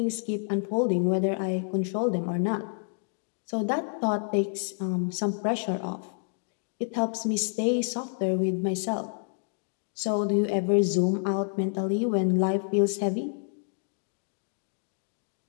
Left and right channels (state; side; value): silent; right; 59 dB below the other